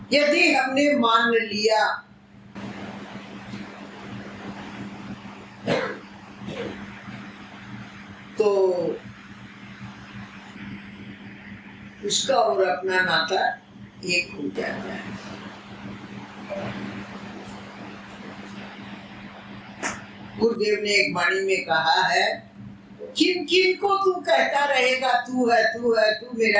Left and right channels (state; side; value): identical; both; correlation 1.00